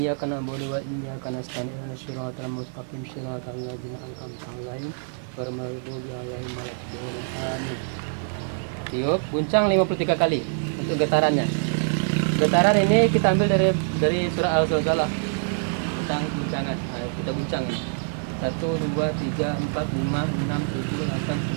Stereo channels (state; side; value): silent; left; 59 dB below the other